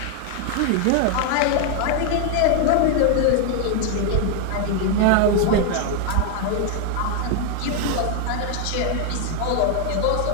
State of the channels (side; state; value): both; different; correlation 0.00